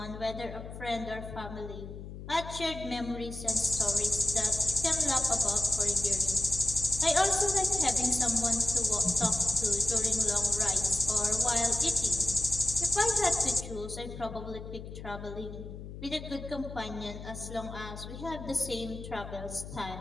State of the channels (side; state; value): left; noise; hum, 11 dB below the sound